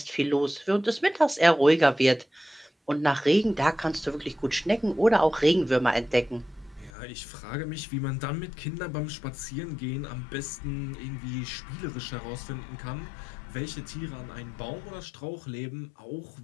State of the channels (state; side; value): drops out; right; at 6.9 s